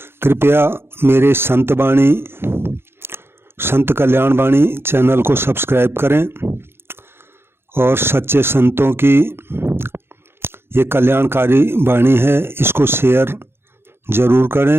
कृपया मेरे संत कल्याण वाणी चैनल को सब्सक्राइब करें और सच्चे संतों की ये कल्याणकारी वाणी है, इसको शेयर ज़रूर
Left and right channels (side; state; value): left; late; 0.11 ms